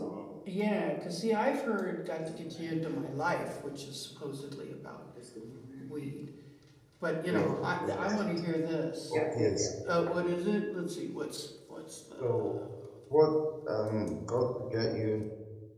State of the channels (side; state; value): both; identical; correlation 1.00